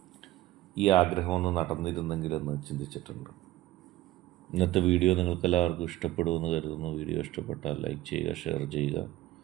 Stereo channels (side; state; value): left; quieter; 15.8 dB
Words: ഈ ആഗ്രഹമൊന്ന് നടന്നിരുന്നെങ്കിലെന്ന് ചിന്തിച്ചിട്ടുണ്ട്. ഇന്നത്തെ വീഡിയോ നിങ്ങൾക്കെല്ലാവർക്കും ഇഷ്ടപ്പെടുമെന്ന് കരുതുന്നു. വീഡിയോ ഇഷ്ടപ്പെട്ടാൽ ലൈക്ക് ചെയ്യുക, ഷെയർ ചെയ്യുക,